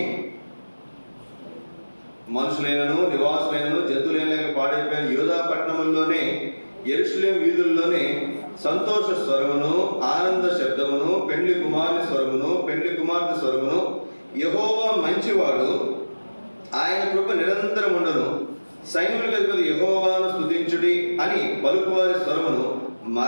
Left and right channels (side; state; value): both; inverted; correlation -1.00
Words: మనుషులైనను నివాసులైనను జంతువులైన లేక పాడైపోయిన యోధా పట్టణముల్లోనే యెరూషలేము వీధుల్లోనే సంతోష స్వరమును, ఆనంద శబ్దమును, పెండ్లి కుమారుని స్వరమును, పెండ్లి కుమార్తె స్వరమును, యెహోవా మంచివాడు, ఆయన కృప నిరంతరం ఉండను, సైన్యములకు అధిపతి యెహోవాను స్తుతించుడి అని పలుకువారి స్వరమును